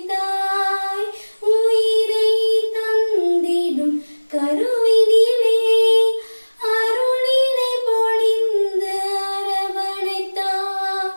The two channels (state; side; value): inverted; both; correlation -1.00